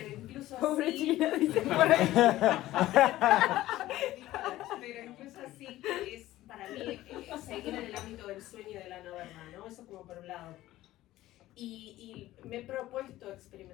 incluso pobre así... China, dice por ahí. Pero incluso así es para mí seguir en el ámbito del sueño y de la no verdad, ¿no? Eso como por un lado. Y me he propuesto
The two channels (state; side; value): quieter; right; 15.6 dB